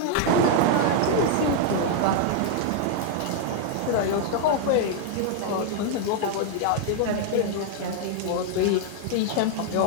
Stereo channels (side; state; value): both; different; correlation 0.00